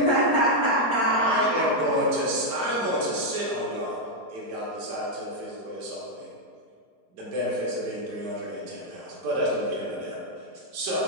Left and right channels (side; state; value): left; late; 5.0 ms